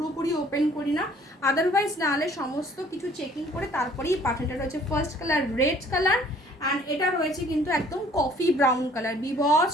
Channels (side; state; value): both; normal; correlation 0.56